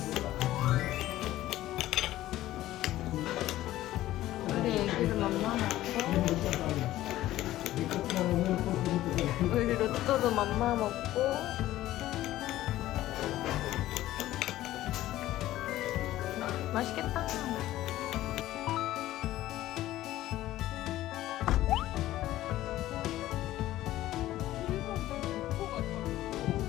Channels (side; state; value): right; quieter; 14.9 dB